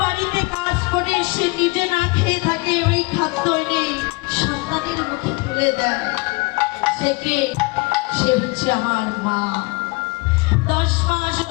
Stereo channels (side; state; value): right; quieter; 26.9 dB